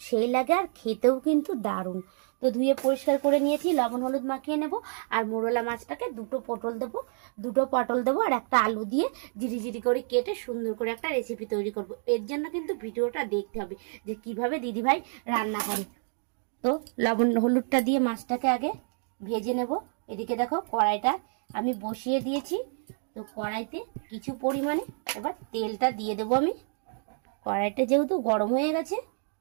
সেই লাগে আর খেতেও কিন্তু দারুণ। তো ধুয়ে পরিষ্কার করে নিয়েছি, লবণ হলুদ মাখিয়ে নেব। আর মোরলা মাছটাকে দুটো পটল দেবো আর একটা আলু দিয়ে জিরি জিরি করে কেটে সুন্দর করে একটা রেসিপি তৈরি করব। এর জন্য কিন্তু ভিডিওটা দেখতে হবে যে কিভাবে দিদিভাই রান্না করে। তো লবণ হলুদটা দিয়ে মাছটাকে আগে ভেজে নেব। এদিকে দেখো কড়াইটা আমি বসিয়ে দিয়েছি। তো কড়াইতে কিছু পরিমাণে এবার তেলটা দিয়ে দেবো আমি। কড়াইটা যেহেতু গরম হয়ে গেছে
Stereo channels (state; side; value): silent; left; 56 dB below the other